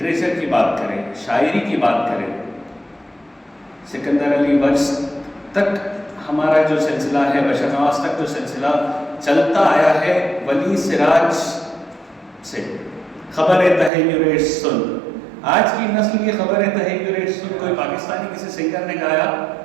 کی بات کریں، شاعری کی بات کریں، سکندر علی وجز تک ہمارا جو سلسلہ ہے، بشر نواز تک جو سلسلہ چلتا آیا ہے، ولی سراج سے خبر تحیر سن، آج کی نسل کی خبر تحیر سن کوئی پاکستانی کسی سنگر نے گایا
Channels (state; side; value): drops out; left; at 13.9 s